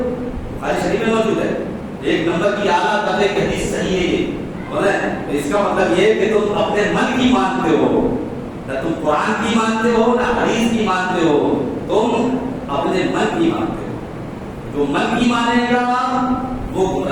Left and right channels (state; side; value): identical; both; correlation 1.00